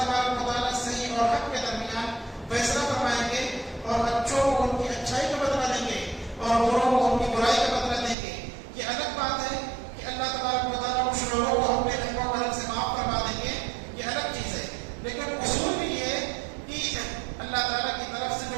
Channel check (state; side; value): drops out; left; at 8.2 s